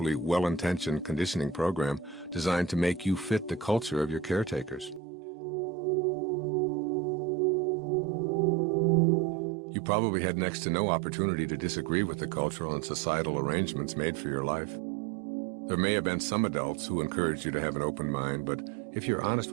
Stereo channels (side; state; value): left; drops out; at 5.0 s